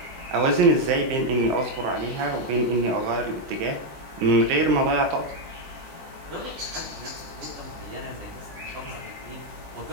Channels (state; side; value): late; left; 20 ms